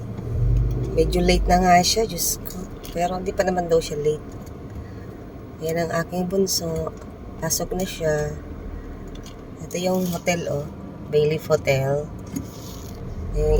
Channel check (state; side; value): identical; both; correlation 1.00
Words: Medyo late na nga siya, Diyos ko. Pero hindi pa naman daw siya late. Ayan ang aking bunso. Pasok na siya. Ito yung hotel, oh. Bayleaf Hotel. Ayan